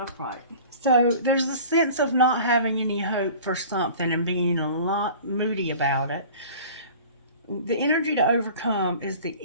So there's a sense of not having any hope for something and being a lot moody about it. The energy to overcome is the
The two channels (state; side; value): inverted; both; correlation -0.43